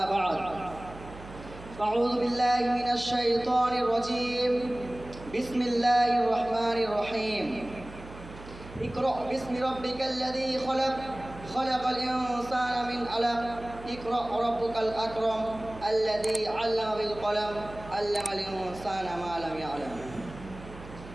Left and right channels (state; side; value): noise; right; hum, 16 dB below the sound